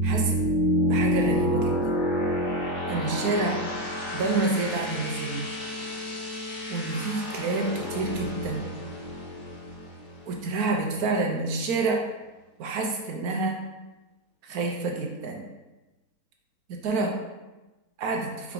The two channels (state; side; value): late; left; 4.4 ms